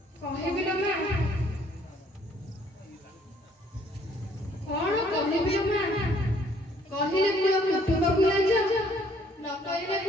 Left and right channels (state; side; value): normal; both; correlation 0.62